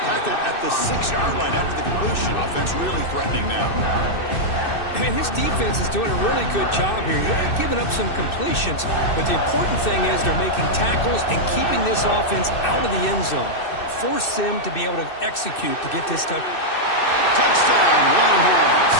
Tackled at the 6-yard line after the completion. Offense really threatening now. And his defense is doing a really good job here. They're giving up some completions, but the important thing is they're making tackles and keeping this offense out of the end zone. Force them to be able to execute to get this touchdown. Touchdown, Longhorns.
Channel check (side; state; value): right; late; 2.6 ms